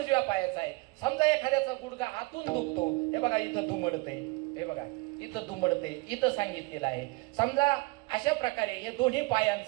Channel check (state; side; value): quieter; left; 24.8 dB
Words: पायाचं आहे. समजा एखाद्याचा गुडघा आतून दुखतो, हे बघा इथं दुमडते, हे बघा इथं दुमडते, इथं सांगितलेलं आहे. समजा अशा प्रकारे हे दोन्ही